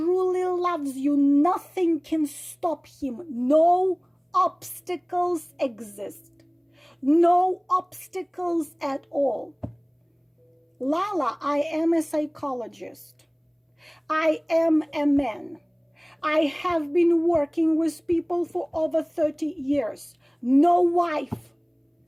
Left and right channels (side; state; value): both; identical; correlation 1.00